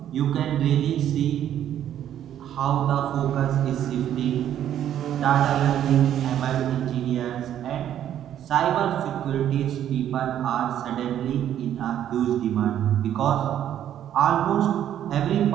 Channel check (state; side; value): quieter; left; 10.7 dB